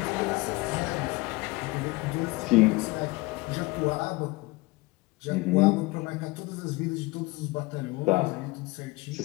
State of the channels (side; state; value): right; quieter; 22.2 dB